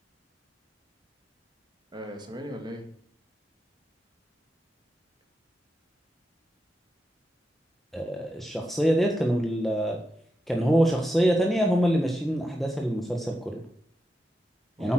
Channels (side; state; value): both; normal; correlation 0.87